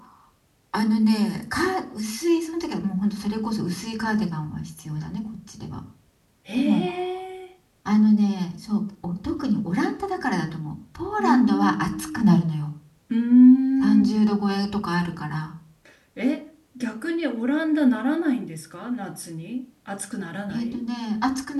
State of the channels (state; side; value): identical; both; correlation 1.00